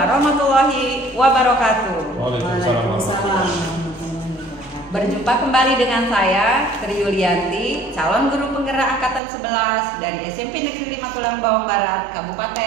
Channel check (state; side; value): drops out; left; at 9.2 s